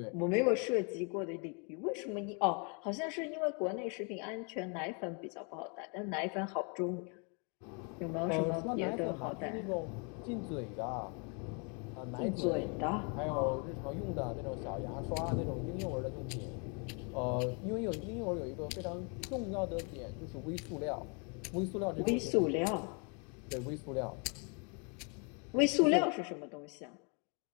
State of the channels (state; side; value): quieter; right; 35.7 dB